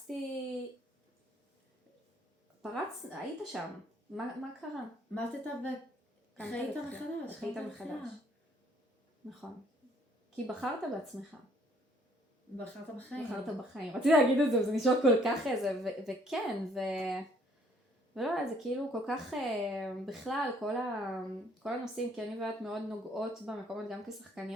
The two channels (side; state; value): both; normal; correlation 0.63